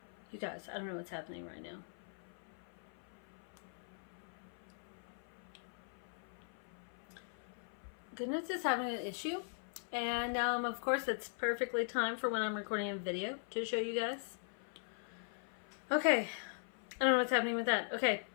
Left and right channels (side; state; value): right; silent; 51 dB below the other